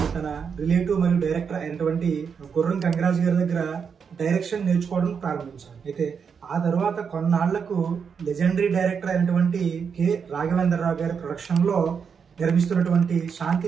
తన రిలేటివ్ మరియు డైరెక్టర్ అయినటువంటి గుర్రం కంగరాజు గారి దగ్గర డైరెక్షన్ నేర్చుకోవడం ప్రారంభించారు. అయితే ఆ తర్వాత కొన్నాళ్లకు లెజెండరీ డైరెక్టర్ అయినటువంటి కె రాఘవేంద్రరావు గారి ప్రొడక్షన్లో నిర్మిస్తున్నటువంటి శాంతి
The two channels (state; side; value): quieter; left; 6.4 dB